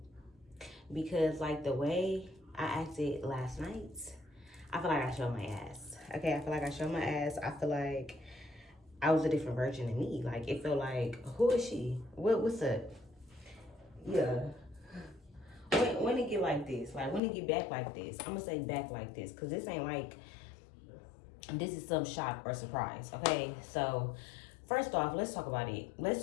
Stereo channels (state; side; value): drops out; right; at 17.2 s